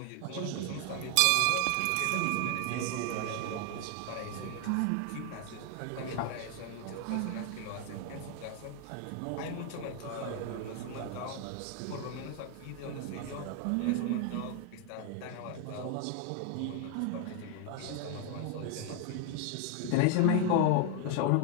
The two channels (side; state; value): both; different; correlation 0.00